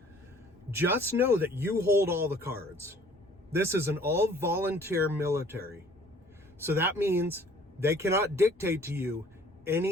just know that you hold all the cards. This is an all-volunteer military. So that means they cannot dictate to you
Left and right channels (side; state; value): both; normal; correlation 0.54